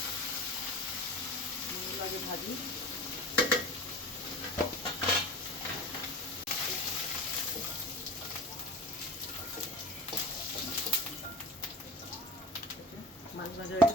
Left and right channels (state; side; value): normal; both; correlation 0.35